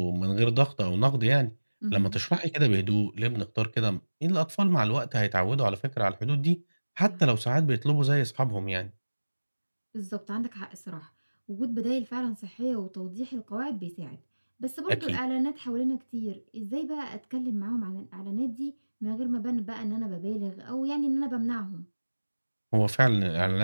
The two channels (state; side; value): inverted; both; correlation -1.00